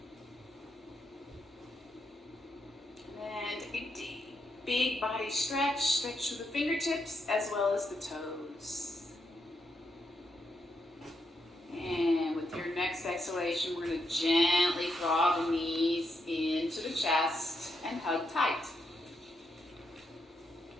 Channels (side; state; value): both; normal; correlation 0.82